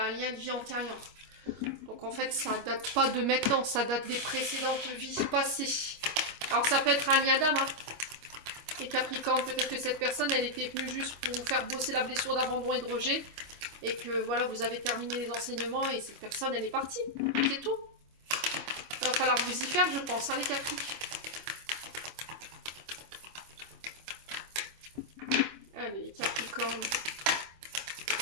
un lien de vie antérieur. Donc en fait, ça date pas de maintenant, ça date des précédentes vies passées. Alors ça peut être un lien d'âme, hein. Et Capricorne, peut-être que cette personne, elle était venue juste pour vous faire bosser la blessure d'abandon et de rejet, et que voilà, vous avez terminé les enseignements, et cette personne, elle est partie. C'est tout. Il va falloir vous y faire, je pense, hein, les Capri. Allez, les Capricornes.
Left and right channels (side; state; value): left; late; 25 ms